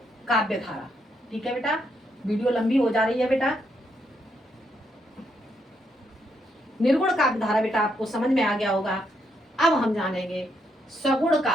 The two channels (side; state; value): both; normal; correlation 0.77